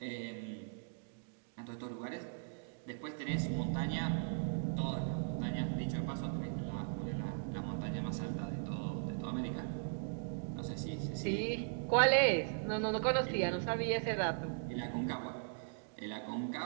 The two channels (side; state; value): left; silent; digital silence